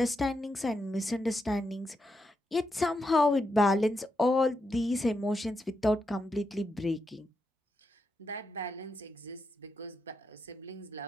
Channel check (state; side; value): normal; both; correlation 0.84